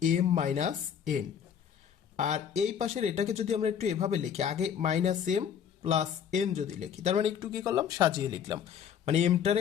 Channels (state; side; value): quieter; right; 8.3 dB